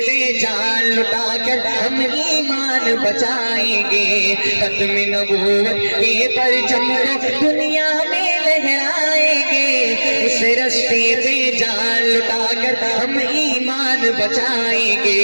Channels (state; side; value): inverted; both; correlation -1.00